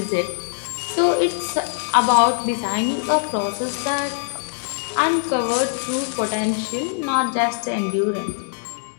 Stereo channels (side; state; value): right; silent; digital silence